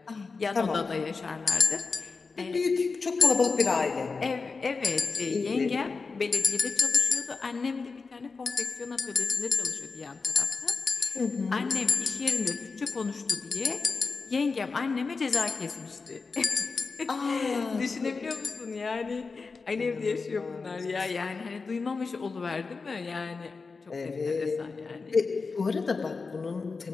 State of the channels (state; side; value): quieter; right; 4.5 dB